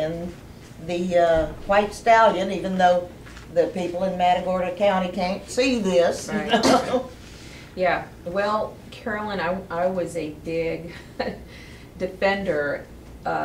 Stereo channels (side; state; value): both; identical; correlation 1.00